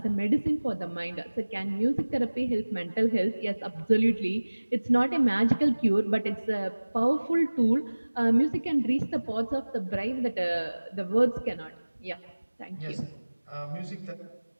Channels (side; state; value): both; inverted; correlation -1.00